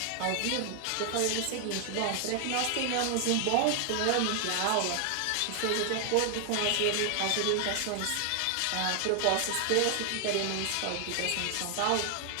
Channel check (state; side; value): different; both; correlation 0.00